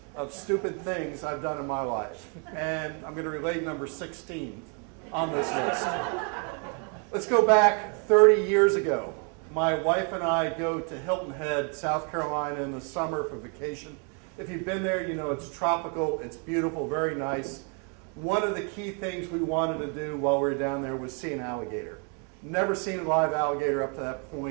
of stupid things I've done in my life, and I'm going to relate number 16 on this list. Let's go back 30 years ago. My wife and I go to Hilton Head, South Carolina in the summer for vacation. If you've been there, you know it's tropical, it's beautiful, very nice. One of the key things we wanted to do while we were down there was see an alligator. Never seen a live alligator up to that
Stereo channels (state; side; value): quieter; left; 38.5 dB